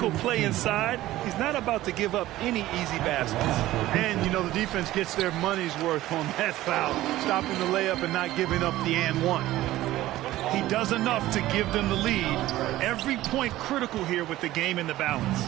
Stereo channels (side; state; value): left; quieter; 15.7 dB